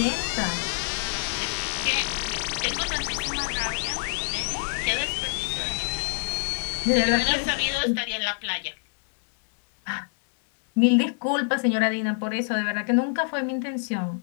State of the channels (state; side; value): silent; right; 61 dB below the other